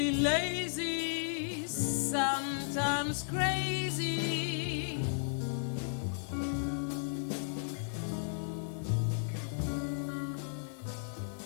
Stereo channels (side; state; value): right; silent; digital silence